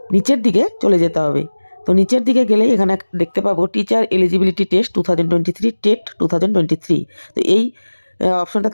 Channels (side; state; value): both; inverted; correlation -1.00